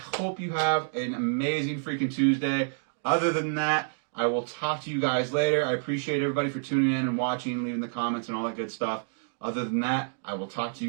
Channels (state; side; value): silent; left; digital silence